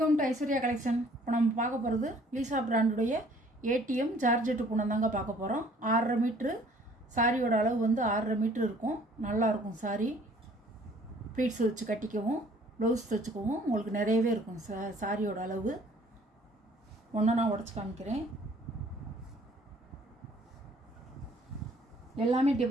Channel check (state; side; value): normal; both; correlation 0.57